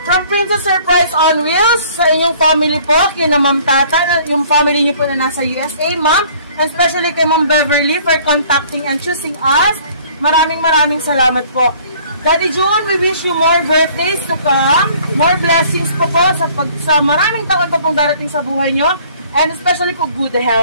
from Princess Surprise on Wheels, sa inyong family po, kina Ma'am Tata, yung family nyo po na nasa USA, Ma'am, and especially kay Ma'am Beverly for contacting and choosing us. Maraming salamat po. Daddy June, we wish you more birthdays to come. More blessings po sa maraming taon pa pong darating sa buhay nyo. And especially po good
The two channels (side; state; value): both; inverted; correlation -0.55